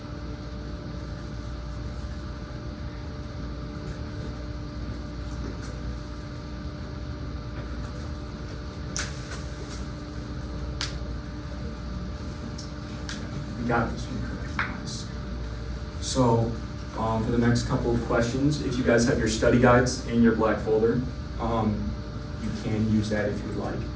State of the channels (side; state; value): both; identical; correlation 1.00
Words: You got this one correct, nice. So, for the next couple of questions, if you guys have your study guides in your black folder, you can use that if you would like.